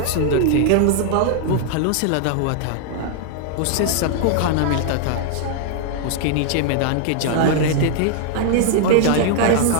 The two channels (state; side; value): different; both; correlation 0.00